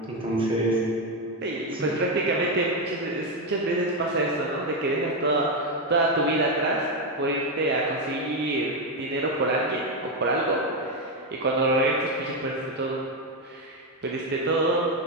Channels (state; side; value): normal; both; correlation 0.07